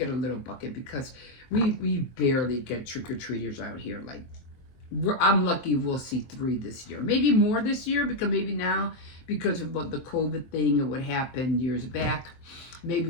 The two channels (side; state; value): right; late; 23 ms